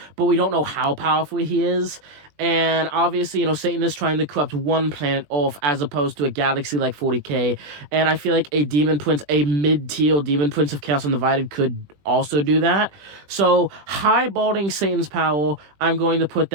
but we don't know how powerful he is. And obviously, Satan is trying to corrupt one planet off as opposed to a galaxy like 40K. And I feel like a Demon Prince, a mid-tier Demon Prince of Chaos Undivided could also do that. So, highballing Satan's power, I'm going to put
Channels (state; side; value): late; left; 20 ms